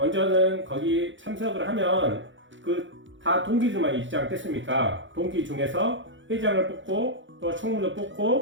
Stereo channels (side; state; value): left; late; 0.55 ms